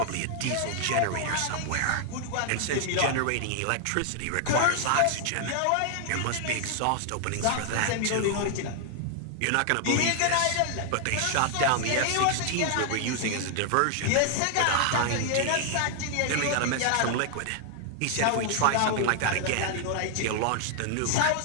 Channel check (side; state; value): both; different; correlation 0.00